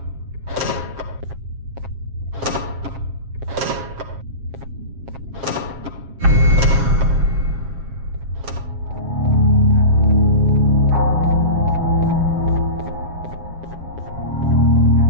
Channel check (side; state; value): left; late; 7.4 ms